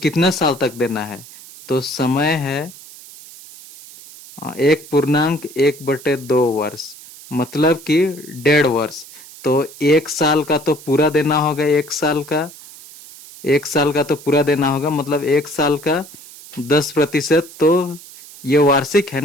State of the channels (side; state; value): right; noise; hiss, 18 dB below the sound